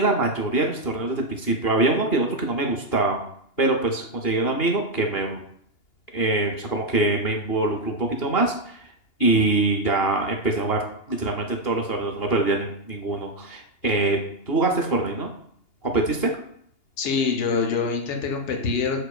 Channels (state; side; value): late; right; 2.8 ms